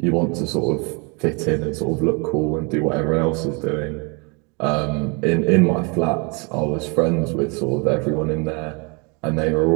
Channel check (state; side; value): quieter; left; 31.9 dB